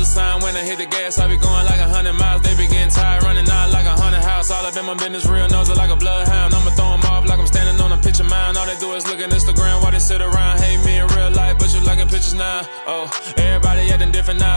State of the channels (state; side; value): inverted; both; correlation -1.00